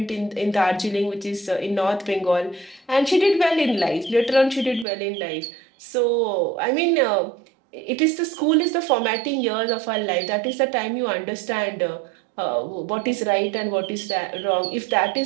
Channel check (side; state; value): left; drops out; at 4.9 s